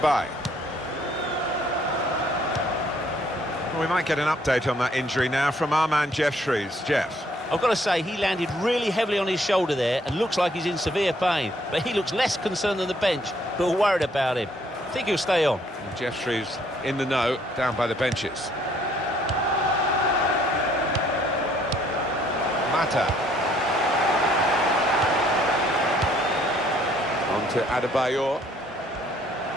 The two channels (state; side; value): normal; both; correlation 0.64